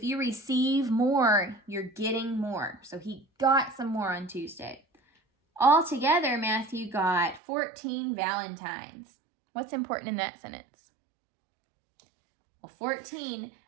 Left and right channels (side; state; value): left; drops out; at 7.4 s